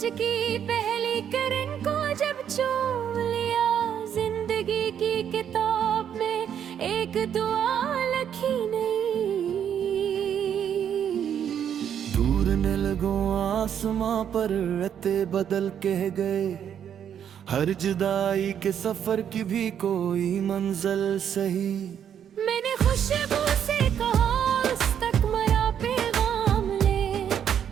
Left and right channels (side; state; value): left; quieter; 8.9 dB